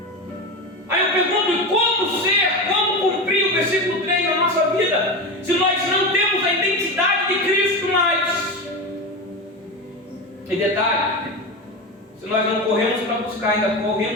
Aí eu pergunto, como cumprir o versículo 3 na nossa vida, se nós não temos a identidade de Cristo mais? E detalhe, se nós não corremos para buscar, ainda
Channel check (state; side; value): normal; both; correlation 0.21